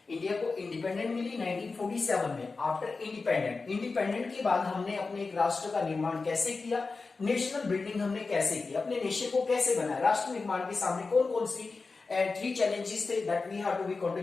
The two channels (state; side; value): quieter; right; 4.1 dB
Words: इंडिया को इंडिपेंडेंट मिली 1947 में. आफ्टर इंडिपेंडेंट के बाद हमने अपने एक राष्ट्र का निर्माण कैसे किया, नेशनल बिल्डिंग हमने कैसे की, अपने नेशन को कैसे बनाया, राष्ट्र निर्माण के सामने कौन कौन सी and 3 challenges that we have to be